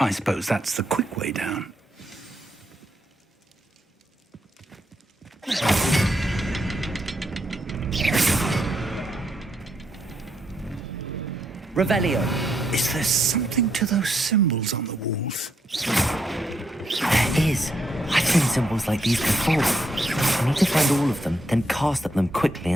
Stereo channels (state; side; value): normal; both; correlation 0.78